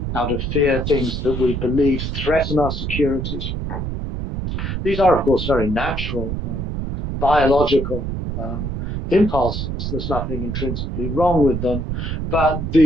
out of fear things that we believe threaten our securities. These are, of course, very natural, biological impulses. There's nothing intrinsically wrong with them. But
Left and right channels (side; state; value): right; noise; rumble, 3 dB below the sound